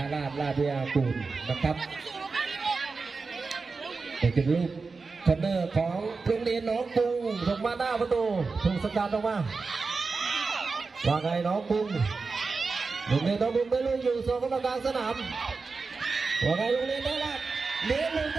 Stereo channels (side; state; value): left; quieter; 4.3 dB